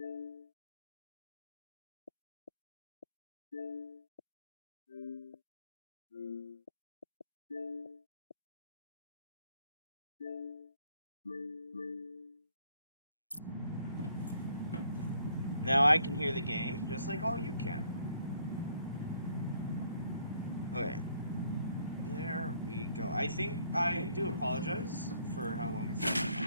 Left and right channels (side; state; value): both; inverted; correlation -0.66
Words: Now I can hear the game just like all you can. Okay. There we go. I think I do apologize for how long it's taken.